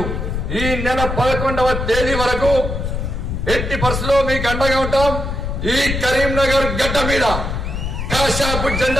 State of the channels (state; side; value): noise; left; rumble, 3 dB below the sound